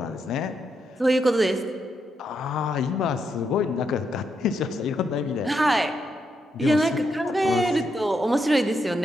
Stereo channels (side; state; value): both; normal; correlation 0.81